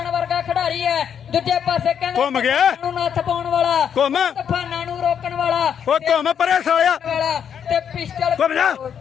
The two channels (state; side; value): quieter; right; 8.1 dB